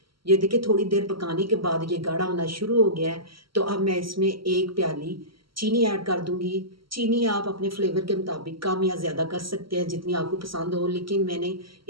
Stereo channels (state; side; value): late; left; 0.74 ms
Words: ये देखिए थोड़ी देर पकाने के बाद ये गाढ़ा होना शुरू हो गया है। तो अब मैं इसमें 1 प्याली चीनी ऐड कर दूँगी। चीनी आप अपने फ्लेवर के मुताबिक कम या ज़्यादा कर सकते हैं जितनी आपको पसंद हो, लेकिन मैंने